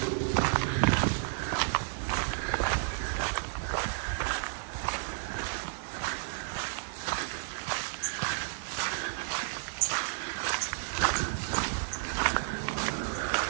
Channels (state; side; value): silent; left; digital silence